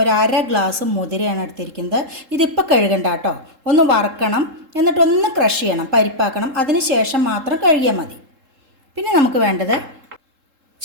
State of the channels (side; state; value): left; late; 3.7 ms